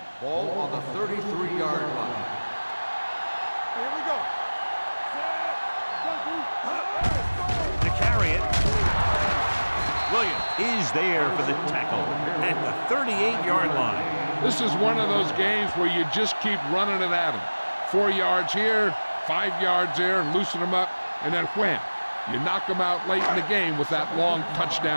Ball on the 33-yard line. Here we go. To carry it, Williams is there for the tackle at the 38-yard line. This is one of those games where you just keep running it at them. 4 yards here, 5 yards there, loosen them up, and then wham. You knock them out late in the game with that long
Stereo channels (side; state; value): both; inverted; correlation -1.00